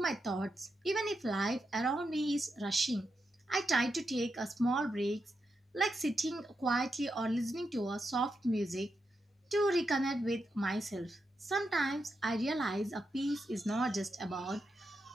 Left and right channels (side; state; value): both; normal; correlation 0.86